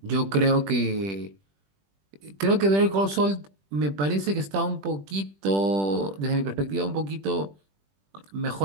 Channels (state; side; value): late; left; 20 ms